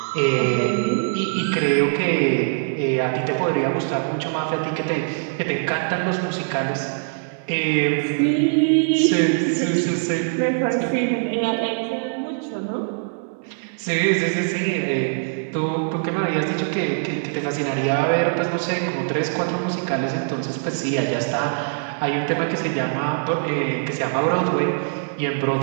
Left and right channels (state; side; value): silent; left; digital silence